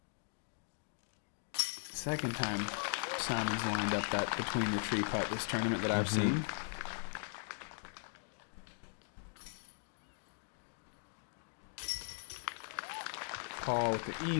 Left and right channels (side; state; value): right; silent; digital silence